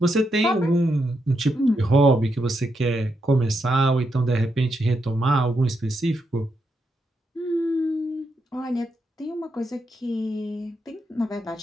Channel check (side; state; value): both; normal; correlation 0.82